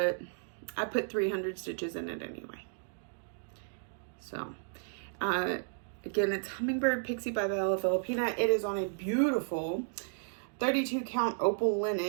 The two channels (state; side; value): silent; left; digital silence